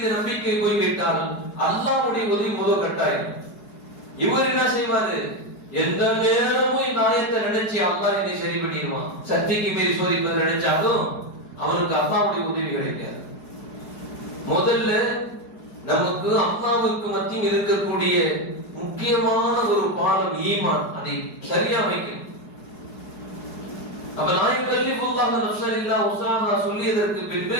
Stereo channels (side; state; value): right; late; 4.8 ms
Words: நம்பிக்கை போய்விட்டால் அல்லாஹ்வுடைய உதவி முதல் கட்டாயம். இவர் என்ன செய்வாரு? எந்த நேரமும் இந்த ஆயத்தை நினைச்சு அல்லாஹ் என்னை சரி பண்ணிடுவான், சக்திக்கு மீறி சோதிப்பது நினைச்சாலும் அவனுக்கு அல்லாஹ்வுடைய உதவி கிடைக்காது. முதல்ல நமக்கு அல்லாஹ்வுக்கு மத்தியில் இருக்கக்கூடிய முக்கியமான ஒரு பாடம் ஈமான், அதை சரியா வைக்கணும். அப்ப லா யுகல்லிஃபுல்லாஹு நஃப்ஸன் இல்லா உஸ்அஹா சொல்லியதற்கு பின்பு